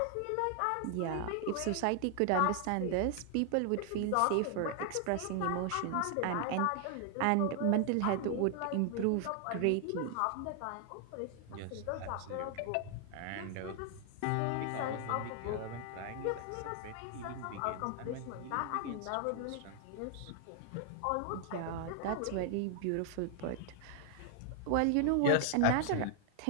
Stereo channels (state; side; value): different; both; correlation 0.00